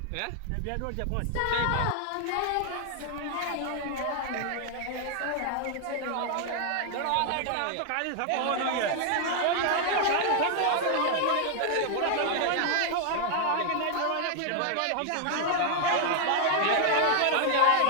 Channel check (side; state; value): both; different; correlation 0.00